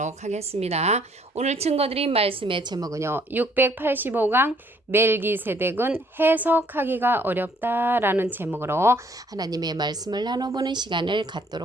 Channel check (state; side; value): normal; both; correlation 0.64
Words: 하겠습니다. 오늘 증거드린 말씀의 제목은요. 685강 멜기세덱은 해석하기가 어렵다라는 제목으로 하나님의 말씀을 나눠보는 시간을